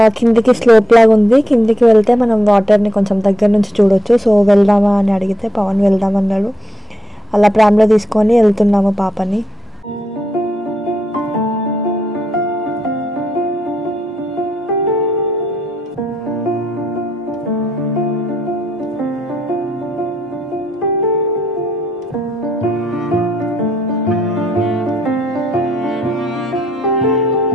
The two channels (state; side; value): normal; both; correlation 0.79